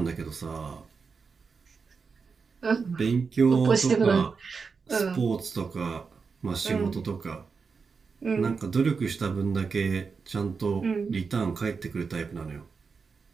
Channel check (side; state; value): left; quieter; 5.1 dB